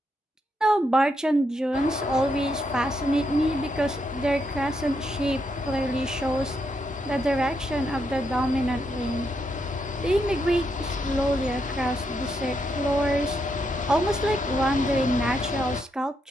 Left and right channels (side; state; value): both; normal; correlation 0.80